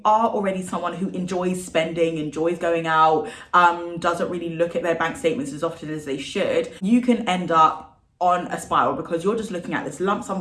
are already someone who enjoys spending, enjoys going out, doesn't really look at their bank statements as often as they should, you can end up on a spiral because you're just looking at this lump sum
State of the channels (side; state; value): both; identical; correlation 1.00